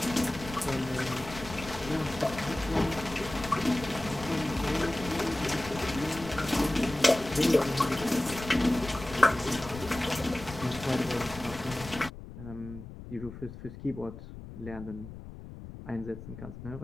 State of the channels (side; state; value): left; noise; rumble, 13 dB below the sound